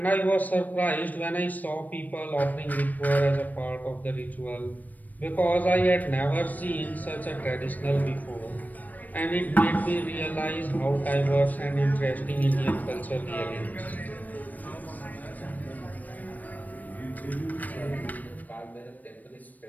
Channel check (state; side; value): late; right; 0.081 ms